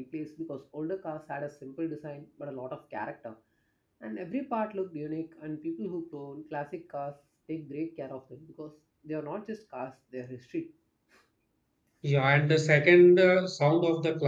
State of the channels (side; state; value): both; identical; correlation 1.00